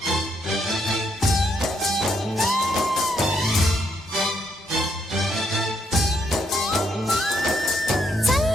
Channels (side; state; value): both; normal; correlation 0.75